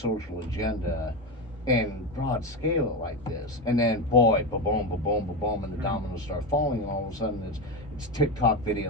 agenda and broad scale it like this, and then boy, ba-boom, ba-boom, ba-boom, and the dominoes start falling, and all of a sudden it's TikTok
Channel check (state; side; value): normal; both; correlation 0.16